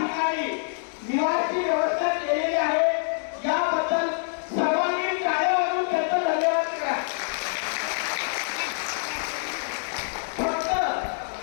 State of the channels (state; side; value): silent; right; digital silence